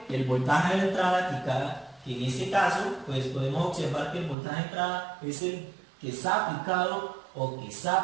el voltaje de entrada, que en este caso pues podemos observar que el voltaje de entrada es el que está aplicado o que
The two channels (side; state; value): left; drops out; at 4.4 s